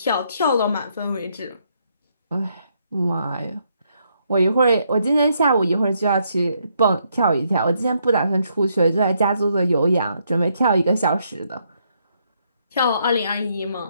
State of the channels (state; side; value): inverted; both; correlation -0.75